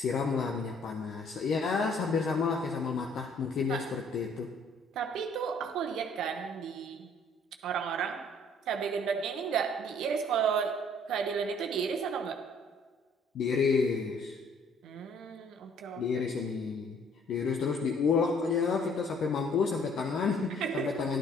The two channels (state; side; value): normal; both; correlation 0.60